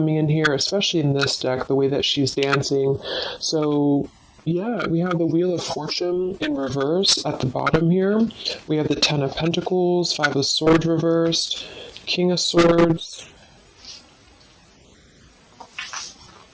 in here, especially in this deck, the way that she's dancing. So yeah, we have the Wheel of Fortune in reverse at the bottom here. We have the Ten of Pentacles, Five of Swords reversed, King of Swords.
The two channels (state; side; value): identical; both; correlation 1.00